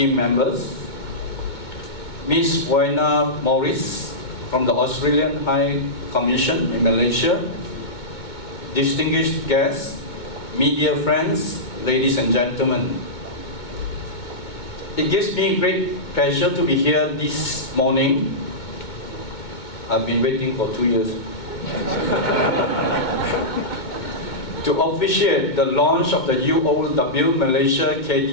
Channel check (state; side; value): late; right; 2.2 ms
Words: members, Ms. Wayna Morris, from the Australian High Commission in Malaysia, distinguished guests, media friends, ladies and gentlemen. It gives me great pleasure to be here this morning. I've been waiting for 2 years. To officiate the launch of the UOW Malaysia